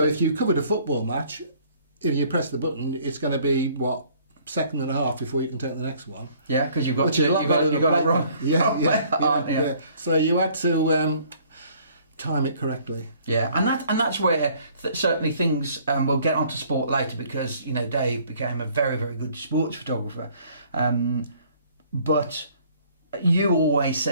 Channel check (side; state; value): both; inverted; correlation -0.59